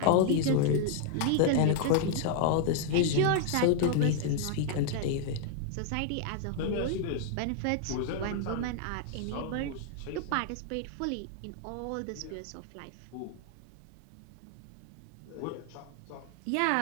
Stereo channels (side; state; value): both; different; correlation 0.00